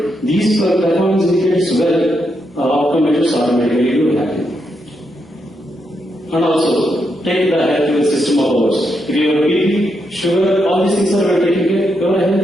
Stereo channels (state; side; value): normal; both; correlation 0.81